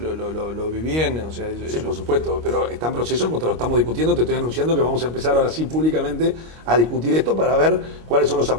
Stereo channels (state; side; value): late; left; 25 ms